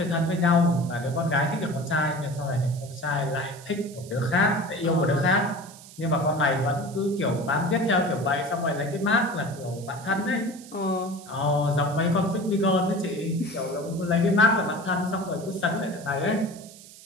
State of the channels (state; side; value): noise; right; hiss, 19 dB below the sound